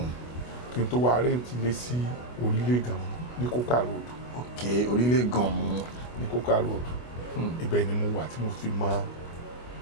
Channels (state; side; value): late; right; 24 ms